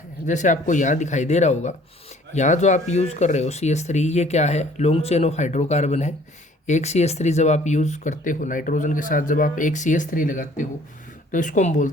जैसे आपको यहाँ दिखाई दे रहा होगा, यहाँ जो आप यूज़ कर रहे हो CH3, ये क्या है, लॉन्ग चेन ऑफ हाइड्रोकार्बन है। एक CH3 जब आप यूज़ करते हो नाइट्रोजन के साथ, जब आप एक CH3 लगाते हो तो इसको हम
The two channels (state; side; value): normal; both; correlation 0.56